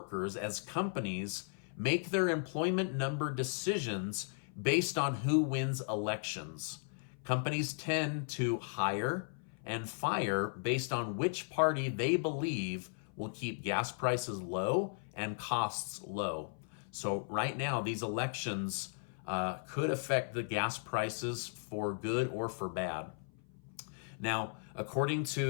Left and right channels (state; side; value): silent; right; 54 dB below the other